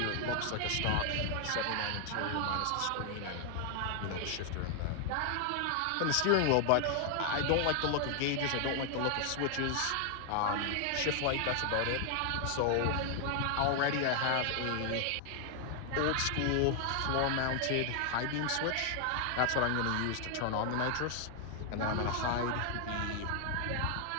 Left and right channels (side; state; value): both; different; correlation 0.00